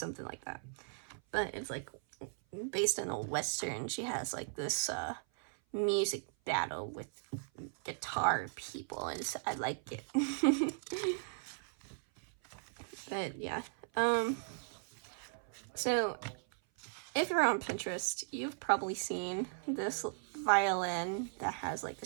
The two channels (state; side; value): silent; left; 53 dB below the other